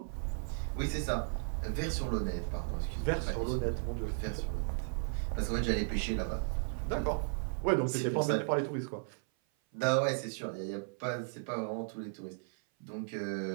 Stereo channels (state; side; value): silent; left; 54 dB below the other